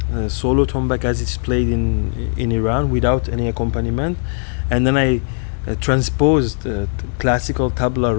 solo tombak as it's played in Iran without any accompaniment, and then I transposed classical tabla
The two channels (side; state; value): right; silent; 63 dB below the other